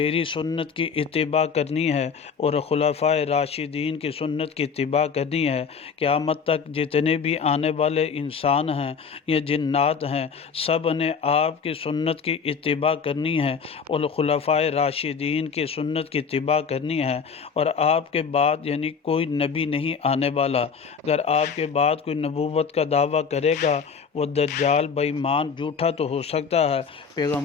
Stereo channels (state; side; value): quieter; right; 6.0 dB